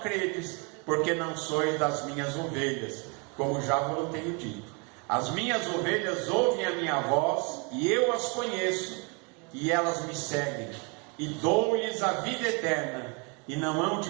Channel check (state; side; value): quieter; left; 33.0 dB